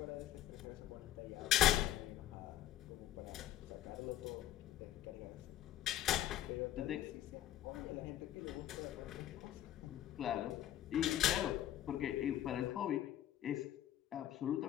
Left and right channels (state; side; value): quieter; right; 12.8 dB